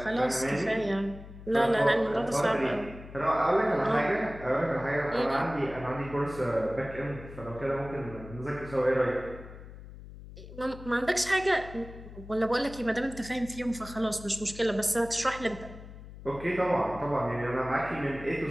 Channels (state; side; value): noise; left; hum, 15 dB below the sound